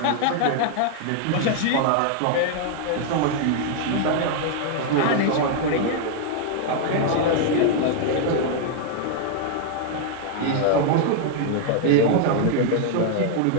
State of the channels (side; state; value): both; different; correlation 0.00